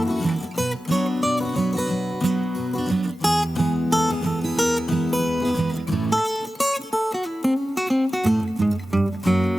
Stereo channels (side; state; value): both; normal; correlation 0.94